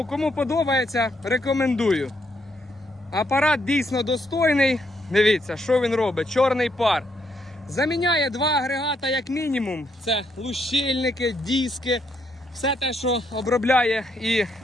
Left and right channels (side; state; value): both; normal; correlation 0.75